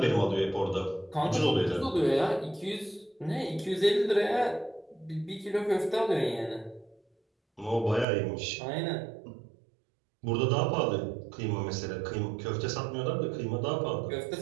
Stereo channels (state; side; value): drops out; left; at 8.1 s